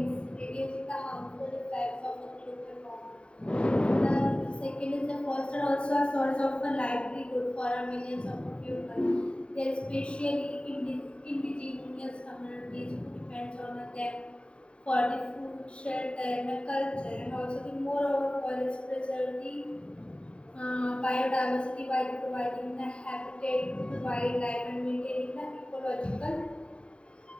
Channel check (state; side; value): late; right; 0.055 ms